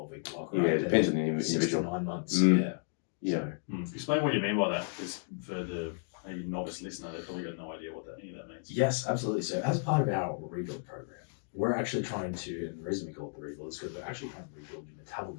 block. Right? Yeah, it depends on the individual. 6 to 9 months. Yeah. Explain what you mean by that, because for the novice listener, they've probably got no idea what any of that means. Yes, absolutely. So as part of our rebuild program, we're actually trying to, and the reason we call it the rebuild is because we're actually trying to rebuild your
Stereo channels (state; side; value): silent; right; digital silence